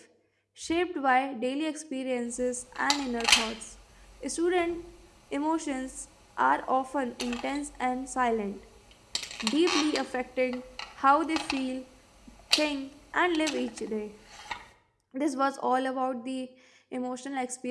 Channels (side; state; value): both; identical; correlation 1.00